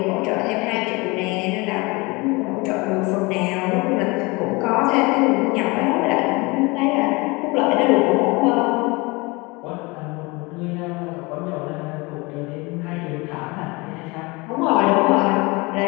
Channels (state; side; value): quieter; right; 25.3 dB